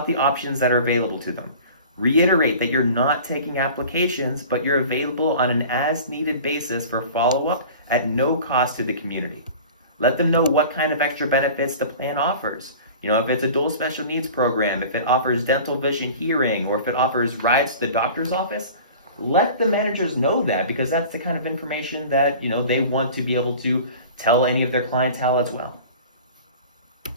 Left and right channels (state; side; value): inverted; both; correlation -0.41